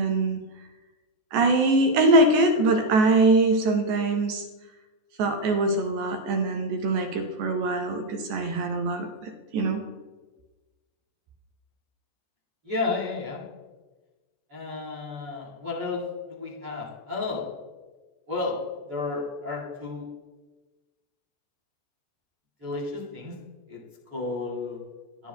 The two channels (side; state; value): left; late; 14 ms